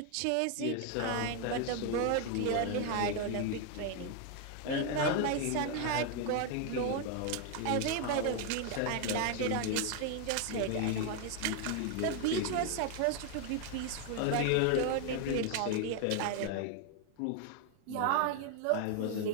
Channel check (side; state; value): both; different; correlation 0.01